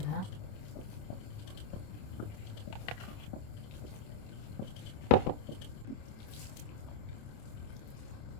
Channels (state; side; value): late; right; 27 ms